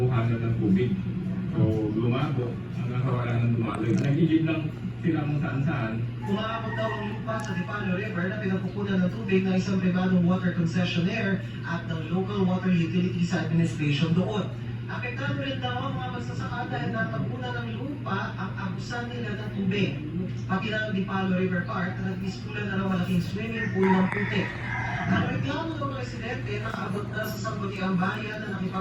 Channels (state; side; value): identical; both; correlation 1.00